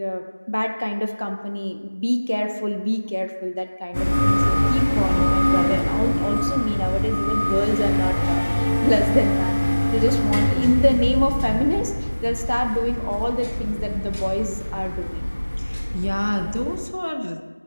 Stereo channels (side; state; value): both; inverted; correlation -1.00